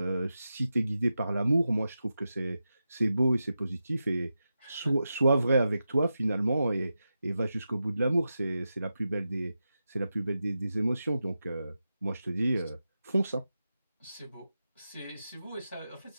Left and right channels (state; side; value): inverted; both; correlation -0.91